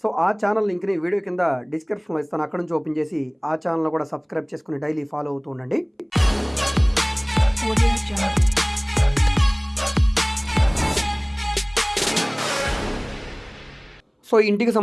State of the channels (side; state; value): both; identical; correlation 1.00